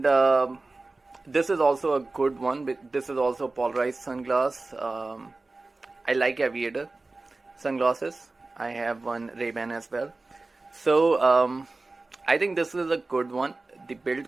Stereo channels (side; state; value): left; quieter; 3.4 dB